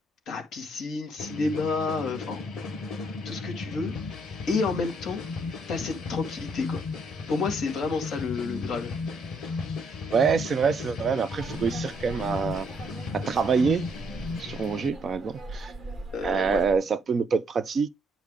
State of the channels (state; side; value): normal; both; correlation 0.71